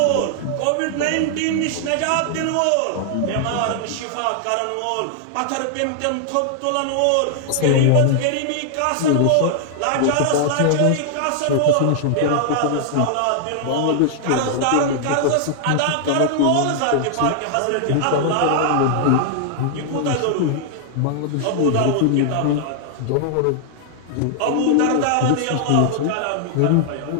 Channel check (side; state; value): both; different; correlation 0.00